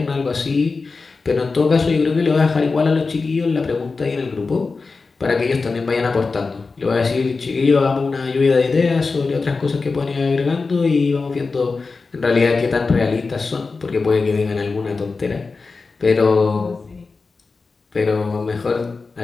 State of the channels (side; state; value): right; quieter; 4.2 dB